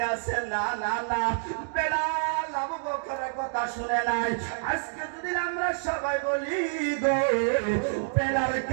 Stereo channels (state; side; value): silent; left; digital silence